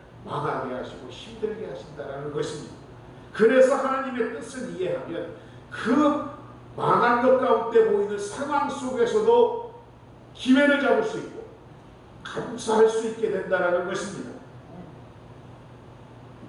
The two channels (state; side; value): identical; both; correlation 1.00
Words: 망하게 하시고 힘들게 하신다는 것입니다. 그래서 하나님의 뜻을 이해하면 그 망한 것 가운데 보이는 상황 속에서도 기회를 잡을 수 있고 감사할 수 있게 된다는 것입니다.